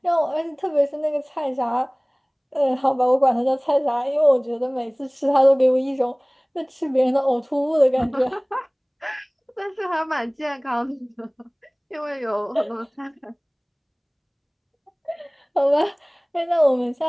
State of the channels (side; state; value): both; identical; correlation 1.00